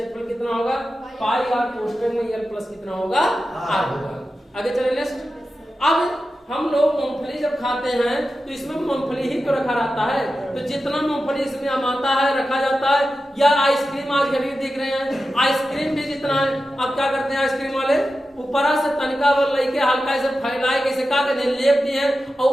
कितना होगा पाई आर कोष्ठक में यल प्लस कितना होगा आर होगा। आगे चले नेक्स्ट। अब हम लोग मूंगफली जब खाते हैं तो इसमें मूंगफली ही तो रखा रहता है, तो जितना मूंगफली इसमें आता है रखा जाता है। या आइसक्रीम आज कभी देख रहे हैं, आइसक्रीम भी जितना है, अब क्या करते हैं आइसक्रीम वाले ऊपरा से तनिका वो लेके हल्का ऐसे फैलाए कैसे क्या करते हैं, लेप दिए और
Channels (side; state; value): both; normal; correlation 0.92